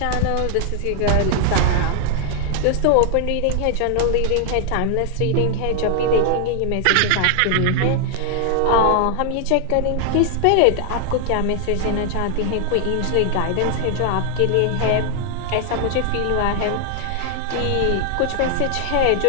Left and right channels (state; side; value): different; both; correlation 0.00